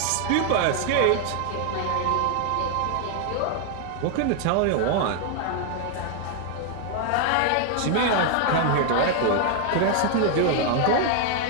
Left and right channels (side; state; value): both; different; correlation 0.00